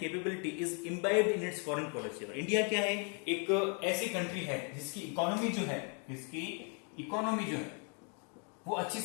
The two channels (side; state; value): right; quieter; 38.7 dB